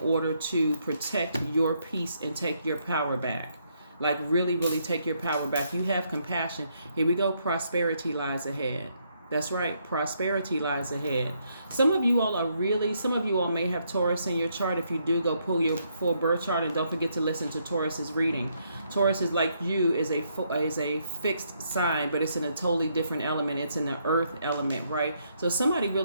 to protect your peace and take your power back. Like really, really take your power back. You have compassion. Here we go. Prosperity lies ahead. That's right. Prosperity lies ahead. Some of you all may have Taurus in your chart. If you do, go pull your full birth chart, and don't forget to listen to Taurus's reading. Taurus is like you, is a fixed sign, but it's in a totally different element. It's in the earth element, right? So somebody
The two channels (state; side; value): inverted; both; correlation -0.74